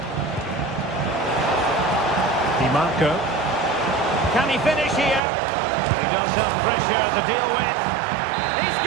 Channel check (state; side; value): drops out; left; at 5.2 s